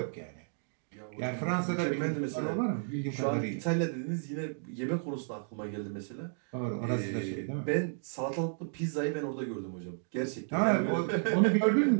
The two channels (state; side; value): silent; left; digital silence